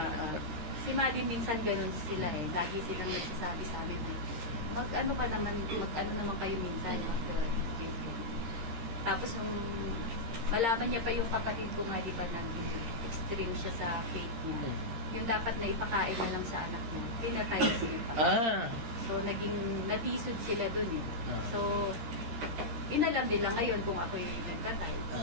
Si Maddie minsan ganun sila eh. Lagi silang nagsasabi sa amin eh, mag-ano naman kayo minsan, tapos nung malaman niya pa yung kapatid ko nga, di ba, naging extreme siya sa faith niya. Yung dapat na ipakain na lang sa anak niya, pinatay siya pa. So, natisod sila dun eh. So, inalam nila ngayon kung ako'y nagtatay.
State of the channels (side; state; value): left; late; 13 ms